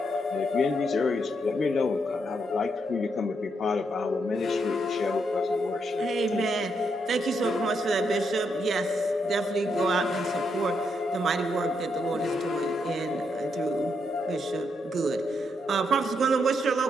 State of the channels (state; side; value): normal; both; correlation 0.79